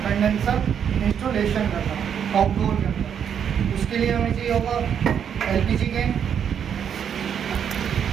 installation करना outdoor के अंदर। उसके लिए हमें चाहिए होगा LPG can,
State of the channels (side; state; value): left; quieter; 8.2 dB